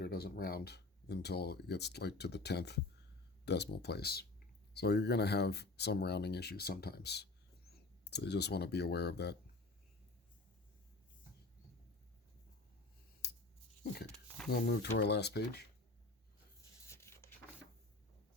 doesn't round until it gets like to the 10th decimal place. So you're going to have some rounding issues sometimes. So you just want to be aware of that. Okay, we'll move to our last page.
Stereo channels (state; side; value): quieter; right; 3.4 dB